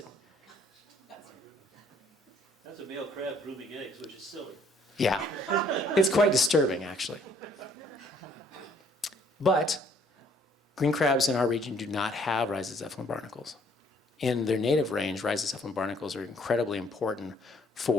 That's a male crab grooming eggs, which is silly. Yeah, it's quite disturbing, actually. But green crabs in our region do not have rhizocephalin barnacles. in their native range, rhizocephalan barnacles are incredibly important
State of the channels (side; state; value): both; normal; correlation 0.62